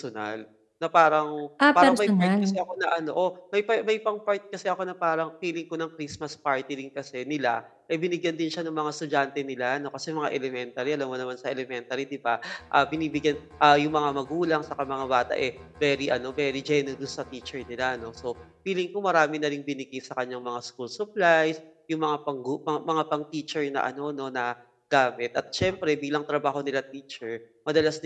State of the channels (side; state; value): both; identical; correlation 1.00